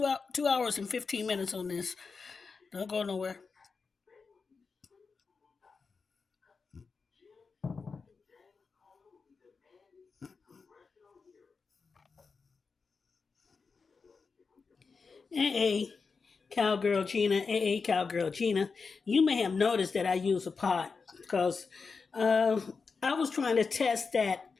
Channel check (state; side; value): quieter; right; 4.9 dB